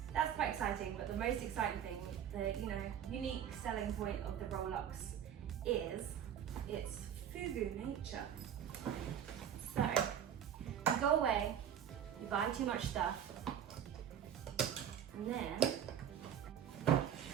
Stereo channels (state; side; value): quieter; left; 9.4 dB